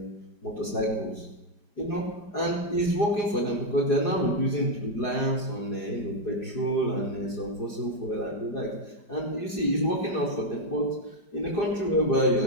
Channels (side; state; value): right; late; 4.9 ms